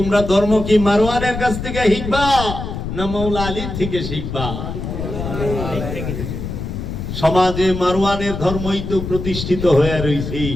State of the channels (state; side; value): noise; left; rumble, 6 dB below the sound